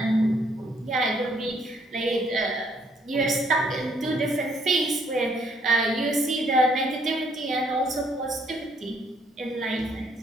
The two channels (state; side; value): normal; both; correlation 0.67